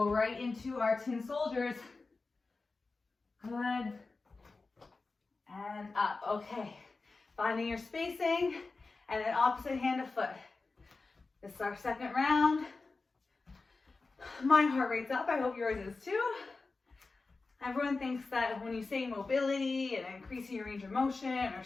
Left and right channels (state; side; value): quieter; right; 3.8 dB